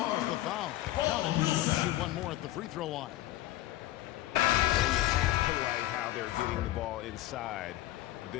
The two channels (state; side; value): quieter; right; 15.4 dB